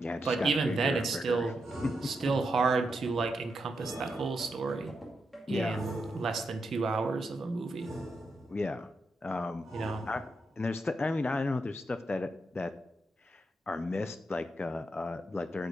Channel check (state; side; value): normal; both; correlation 0.84